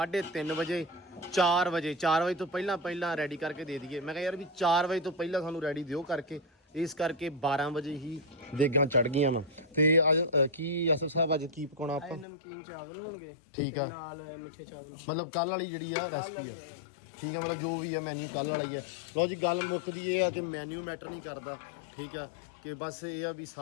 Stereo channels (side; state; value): right; drops out; at 12.2 s